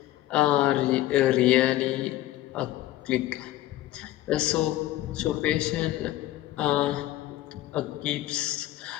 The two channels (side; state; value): right; quieter; 15.0 dB